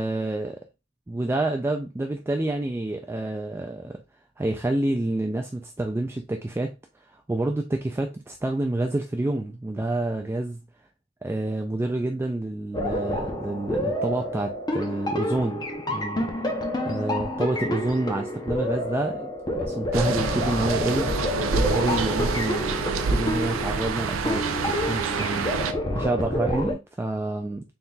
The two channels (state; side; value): normal; both; correlation 0.67